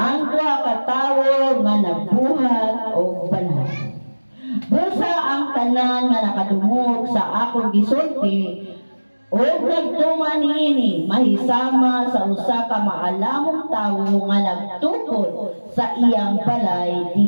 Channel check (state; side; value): inverted; both; correlation -1.00